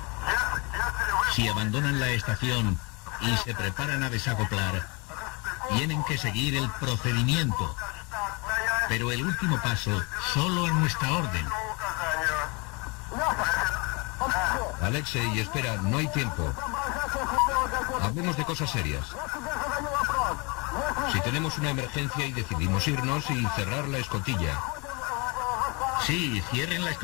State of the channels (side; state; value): right; quieter; 29.7 dB